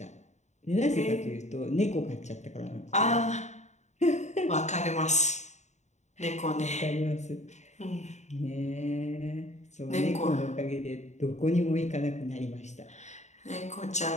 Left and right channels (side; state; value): right; late; 0.34 ms